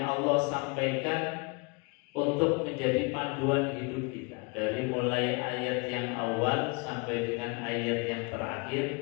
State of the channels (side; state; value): right; quieter; 30.3 dB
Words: Allah sampaikan untuk menjadi panduan hidup kita. Dari mulai ayat yang awal sampai dengan ayat yang terakhir,